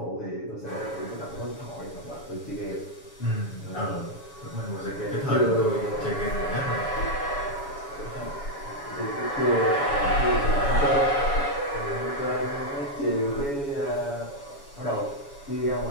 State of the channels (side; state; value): right; late; 7.1 ms